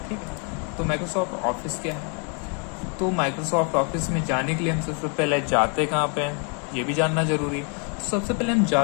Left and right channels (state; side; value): quieter; right; 38.6 dB